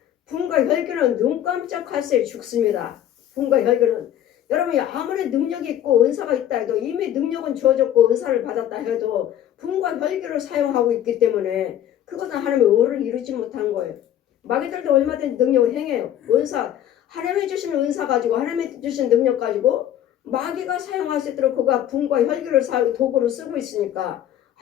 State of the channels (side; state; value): right; quieter; 11.2 dB